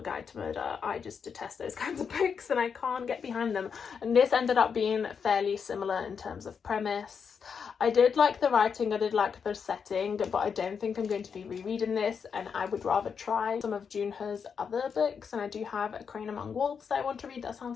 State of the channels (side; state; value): right; quieter; 6.4 dB